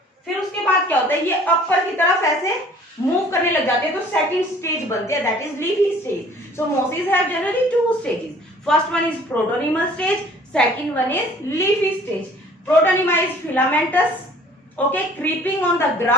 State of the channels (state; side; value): normal; both; correlation 0.53